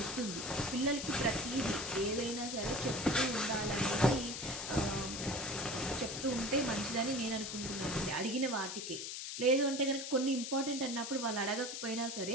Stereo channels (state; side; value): noise; left; hiss, 6 dB below the sound